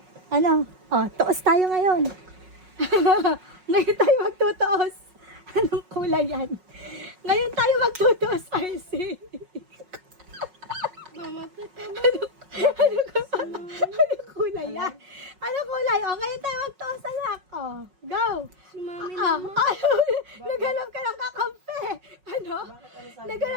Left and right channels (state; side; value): late; left; 5.4 ms